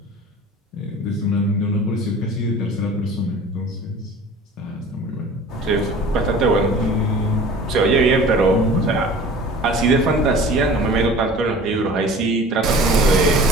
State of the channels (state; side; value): normal; both; correlation 0.43